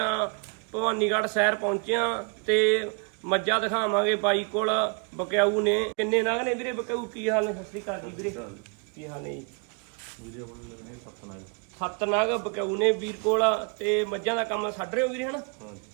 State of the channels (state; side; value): quieter; left; 36.9 dB